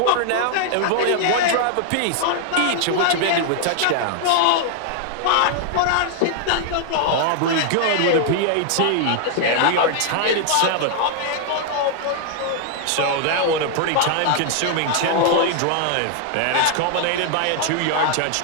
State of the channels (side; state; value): both; different; correlation 0.00